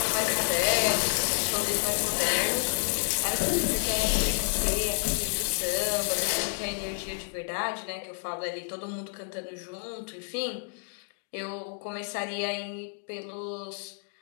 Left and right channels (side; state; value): right; silent; digital silence